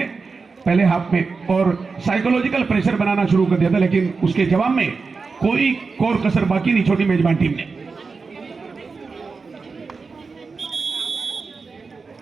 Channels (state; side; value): quieter; left; 4.6 dB